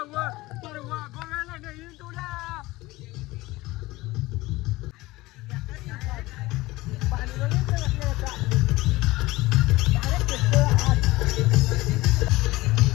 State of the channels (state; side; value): quieter; right; 19.7 dB